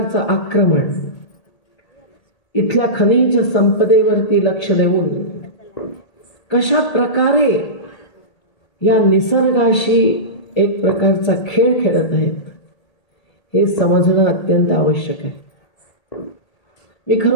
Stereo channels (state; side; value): late; right; 1.8 ms